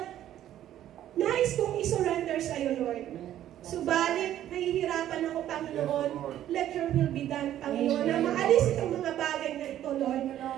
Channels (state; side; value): quieter; left; 12.0 dB